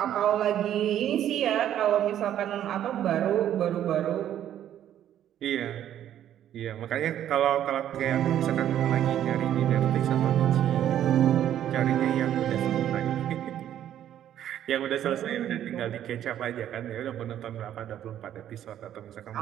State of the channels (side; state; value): left; quieter; 11.0 dB